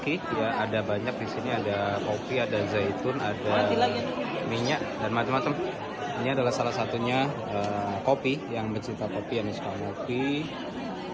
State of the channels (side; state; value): both; identical; correlation 1.00